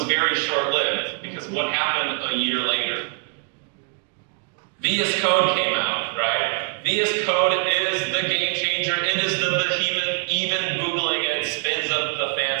very short-lived, because what happened a year later? VS Code came out, right? VS Code is the game changer. It is the behemoth. Even Googling it spins up the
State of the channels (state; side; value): quieter; left; 39.8 dB